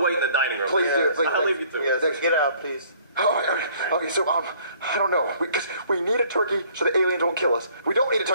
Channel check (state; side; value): inverted; both; correlation -0.58